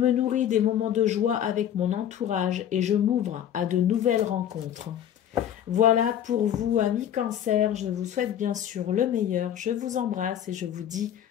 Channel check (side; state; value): right; quieter; 10.2 dB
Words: nourris des moments de joie avec mon entourage et je m'ouvre à de nouvelles rencontres. Voilà pour vous, amis Cancer. Je vous souhaite bien sûr le meilleur. Je vous embrasse et je vous dis